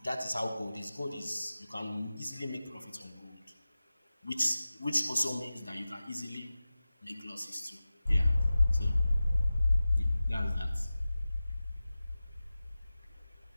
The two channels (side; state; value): both; inverted; correlation -0.96